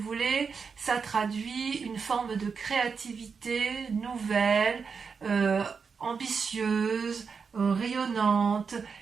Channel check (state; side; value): quieter; left; 5.6 dB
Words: ça traduit une forme de créativité nouvelle, ambitieuse, rayonnante,